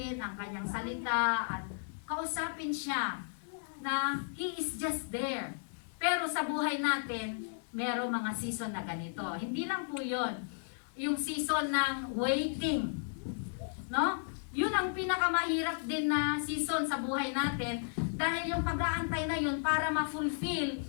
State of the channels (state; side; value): silent; right; digital silence